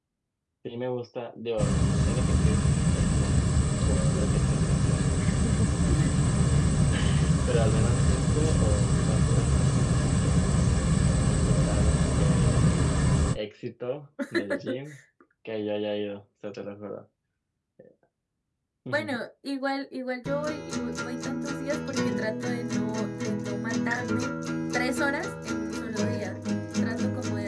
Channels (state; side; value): identical; both; correlation 1.00